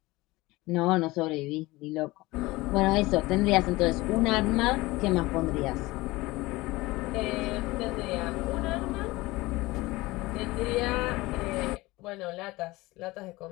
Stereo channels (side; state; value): right; quieter; 20.6 dB